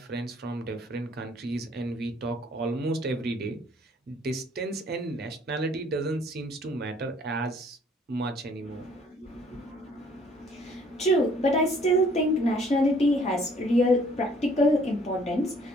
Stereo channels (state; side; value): normal; both; correlation 0.59